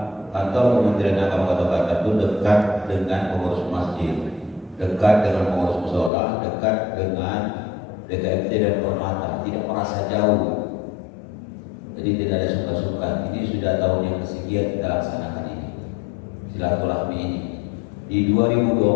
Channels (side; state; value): right; drops out; at 6.1 s